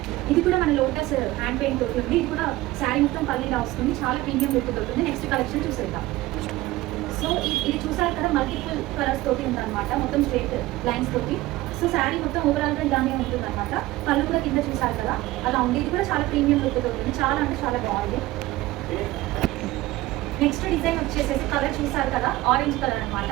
ఇది కూడా మన లోటస్ హ్యాండ్ పెయింట్ తోటి ఉంది. ఇది కూడా శారీ మొత్తం పల్లీలా వస్తుంది. చాలా ప్రీమియం లుక్ దొరుకుతుంది. నెక్స్ట్ కలెక్షన్ చూసేద్దాం. సో ఇది చూసారు కదా, మల్టిపుల్ కలర్స్ తోటి ఉందన్నమాట. మొత్తం స్ట్రైట్ లైన్స్ తోటి. సో శారీ మొత్తం ఓవరాల్గా ఇలానే ఉంటుంది అనమాట. పళ్ళు కూడా కింద చూసారు కదా, అలా ఉంది. ఇది కూడా చాలా ప్రీమియం లుక్ ఉంటుంది. చాలా అంటే చాలా బాగుంది. నెక్స్ట్ డిజైన్ వచ్చేసేసి కలర్ చూసారు కదా, ఆరెంజ్ కలర్ అనమాట.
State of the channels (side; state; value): left; quieter; 17.9 dB